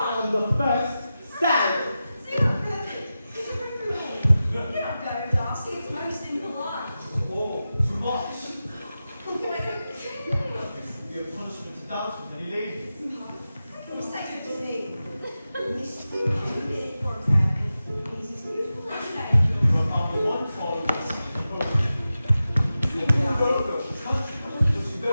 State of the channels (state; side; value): inverted; both; correlation -0.93